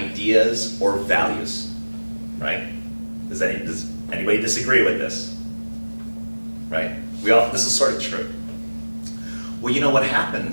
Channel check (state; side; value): inverted; both; correlation -1.00